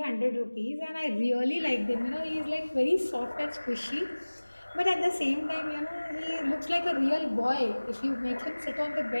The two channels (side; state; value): both; inverted; correlation -1.00